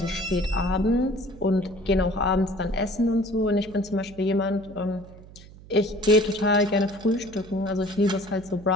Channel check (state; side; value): noise; right; hum, 20 dB below the sound